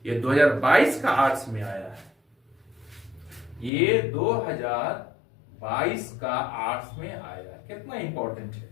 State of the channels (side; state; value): right; drops out; at 3.7 s